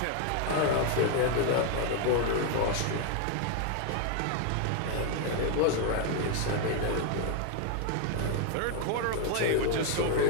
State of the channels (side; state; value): both; different; correlation 0.00